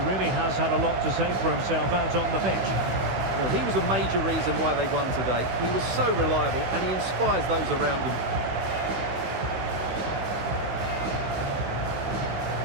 has had a lot to say for himself out on the pitch. Well, he was a major reason why they won today. He was so reliable, and he inspires those around him.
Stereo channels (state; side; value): late; left; 16 ms